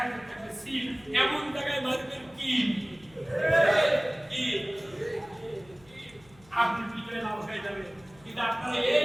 থাকবে সিল। এমন জায়গায় মারবেন কি আপনি বিজয় লাভ হয়ে যাবে। কিন্তু আপনারা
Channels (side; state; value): left; noise; hum, 26 dB below the sound